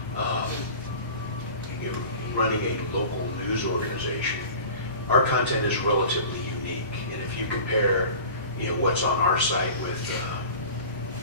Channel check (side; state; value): both; inverted; correlation -0.39